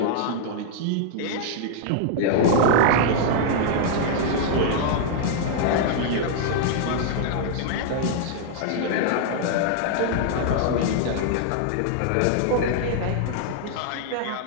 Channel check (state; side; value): different; both; correlation -0.01